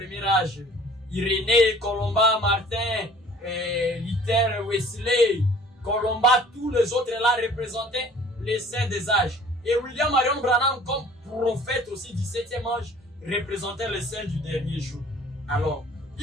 âge. Irénée, Colomba, Martin, Luther, Wesley, Colomba, tous les autres là représentaient les saints des âges. Et William Marion Branham, comme prophète aussi du 7e âge, représentait les saints du dernier jour. Alors,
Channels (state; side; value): normal; both; correlation 0.50